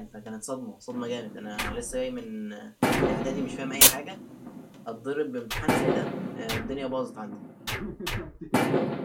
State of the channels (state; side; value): identical; both; correlation 1.00